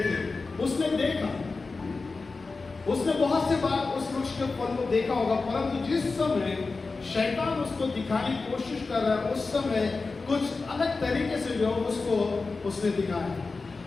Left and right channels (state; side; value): quieter; right; 4.0 dB